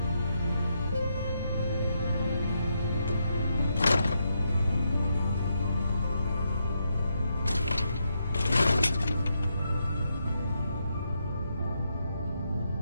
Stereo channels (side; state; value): both; inverted; correlation -0.80